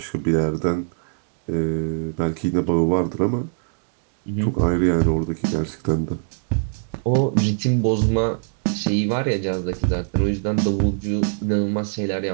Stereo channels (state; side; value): silent; left; digital silence